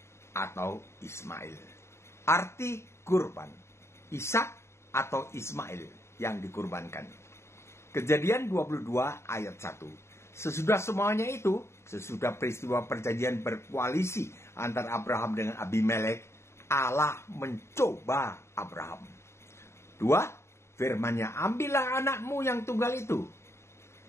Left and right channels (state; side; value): late; right; 0.13 ms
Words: atau Ismail. Arti kurban, Ishak atau Ismail yang dikurbankan. Kejadian 22 ayat 1. Sesudah semuanya itu, sesudah peristiwa perjanjian berkoalisi antara Abraham dengan Abimelek, Allah mencoba Abraham. 2. Firman-Nya, ambillah anakmu yang tunggal itu,